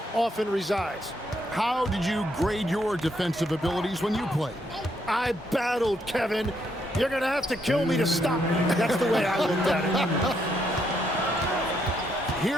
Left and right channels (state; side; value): normal; both; correlation 0.75